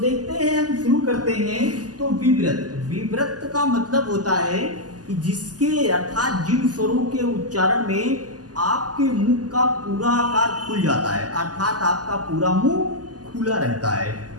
हैं, हम शुरू करते हैं तो विवृत्त। विवृत्त का मतलब होता है कि जिसके अर्थात जिन स्वरों के उच्चारण में आपके मुंह का पूरा आकार खुल जाता है, अर्थात आपका पूरा मुंह खुला रहता है,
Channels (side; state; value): left; late; 0.68 ms